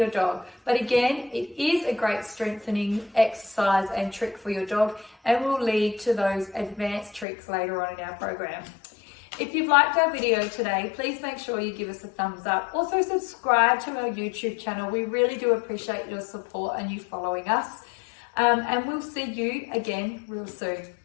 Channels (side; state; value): right; drops out; at 7.2 s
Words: dog. But again, it is a great strengthening exercise and trick for your dog and will lead to those advanced tricks later on in our program. If you've liked our video today, please make sure you give us a thumbs up. Also subscribe to our YouTube channel. We really do appreciate your support and you following us. And we'll see you again real soon.